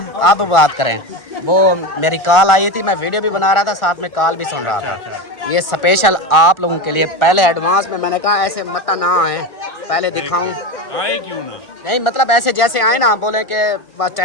आप बात करें। वो मेरी कॉल आई थी, मैं वीडियो भी बना रहा था, साथ में कॉल भी सुन रहा था। ये स्पेशल आप लोगों के लिए पहले एडवांस में मैंने कहा ऐसे मत ना आए, पहले दिखाऊं। आए क्यों ना? नहीं मतलब ऐसे जैसे आए ना, बोले कि बस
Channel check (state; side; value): late; right; 1.4 ms